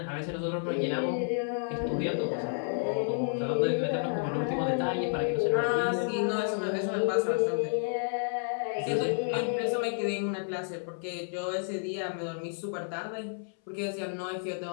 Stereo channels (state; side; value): silent; right; 57 dB below the other